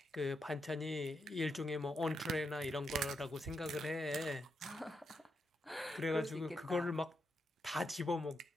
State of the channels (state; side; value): normal; both; correlation 0.83